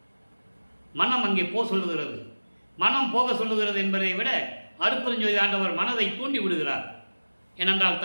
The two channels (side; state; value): both; inverted; correlation -1.00